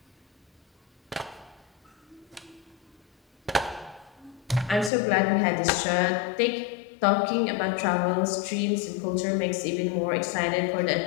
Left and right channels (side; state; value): right; drops out; at 4.9 s